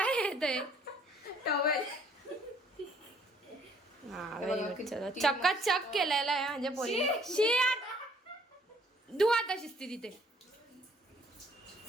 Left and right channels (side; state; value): both; normal; correlation 0.61